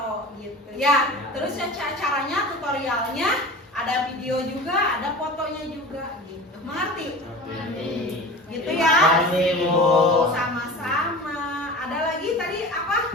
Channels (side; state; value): both; normal; correlation 0.36